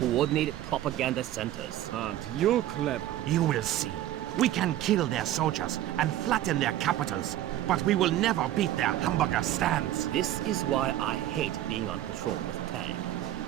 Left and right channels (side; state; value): left; quieter; 13.2 dB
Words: propaganda centers. Aren't you clever? You will see. We can kill their soldiers and flatten their capitals, but we will never beat their hamburger stands. This is why I hate being on patrol with Tang.